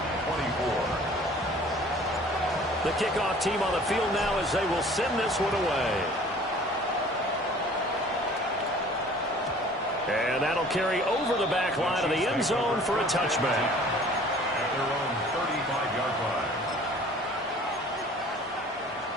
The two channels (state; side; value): normal; both; correlation 0.50